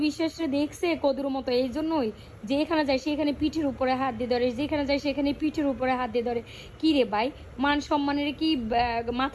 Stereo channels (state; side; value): identical; both; correlation 1.00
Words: বিশ্বাসে দেখছে কদুর মতো। এই জন্যই যেখানে যায় সেখানে পিঠের উপরে হাত দিয়ে ধরে, যেখানে যায় সেখানে পিঠের উপরে হাত দিয়ে ধরে। কি রে ভাই, মান সম্মানের কি